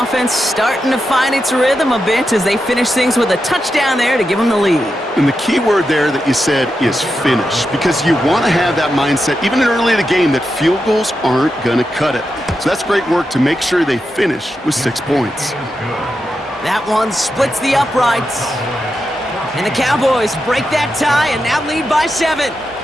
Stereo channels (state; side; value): normal; both; correlation 0.88